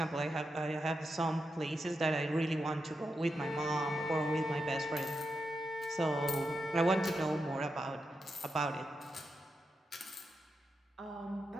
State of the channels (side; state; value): both; normal; correlation 0.86